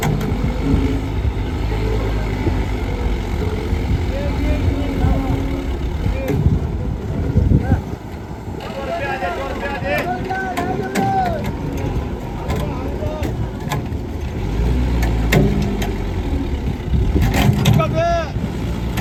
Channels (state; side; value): identical; both; correlation 1.00